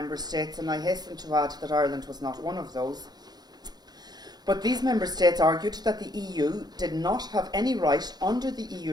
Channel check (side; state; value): left; late; 0.20 ms